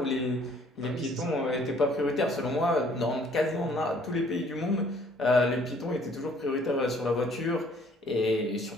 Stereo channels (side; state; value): both; normal; correlation 0.60